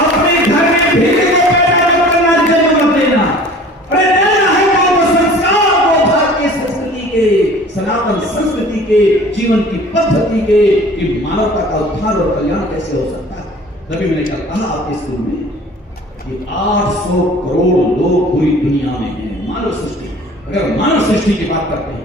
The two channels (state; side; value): normal; both; correlation 0.46